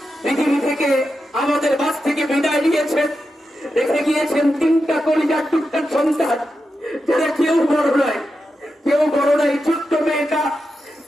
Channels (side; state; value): both; normal; correlation 0.89